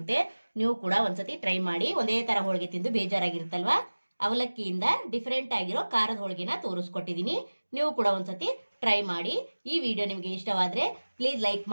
ನೀವು ಕೂಡ ಒಂದ್ಸತಿ ಟ್ರೈ ಮಾಡಿ. ಒಂದೇ ಥರ ಹೋಳಿಗೆ ತಿಂದು ಬೇಜಾರಾಗಿರುತ್ತಲ್ವಾ, ಅವಲಕ್ಕಿಯಿಂದ ಡಿಫ್ರೆಂಟ್ ಆಗಿರೋ ಖಾರದ ಹೋಳಿಗೆನ ತೋರಿಸ್ಕೊಟ್ಟಿದ್ದೀನಿ. ನೀವು ಕೂಡ ಒಂದ್ಸತಿ ಟ್ರೈ ಮಾಡಿ. ಈ ವಿಡಿಯೋ ನಿಮಗೆ ಇಷ್ಟವಾದರೆ ಪ್ಲೀಸ್ ಲೈಕ್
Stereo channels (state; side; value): inverted; both; correlation -1.00